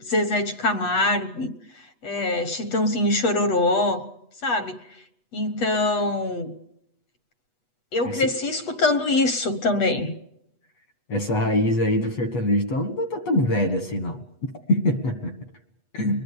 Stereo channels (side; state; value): right; late; 8.2 ms